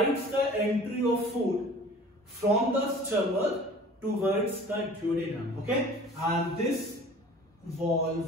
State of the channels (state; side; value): normal; both; correlation 0.46